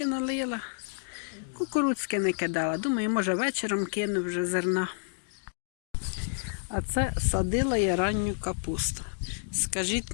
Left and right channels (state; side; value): silent; right; digital silence